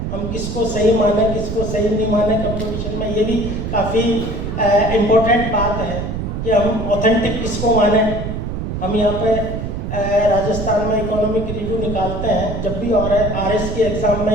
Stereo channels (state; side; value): noise; right; rumble, 4 dB below the sound